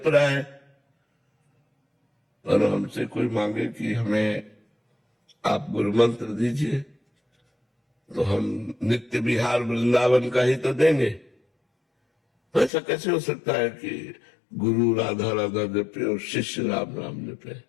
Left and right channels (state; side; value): drops out; right; at 12.7 s